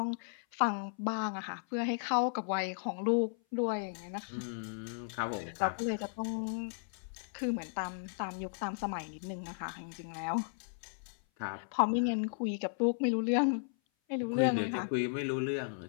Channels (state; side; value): silent; right; 54 dB below the other